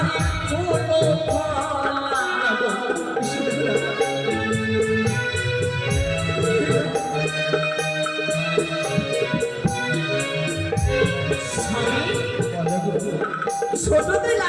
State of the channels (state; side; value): identical; both; correlation 1.00